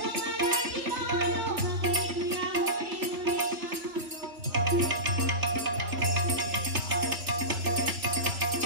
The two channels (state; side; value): late; left; 3.0 ms